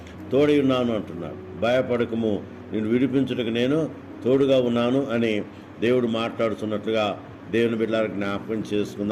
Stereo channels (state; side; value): identical; both; correlation 1.00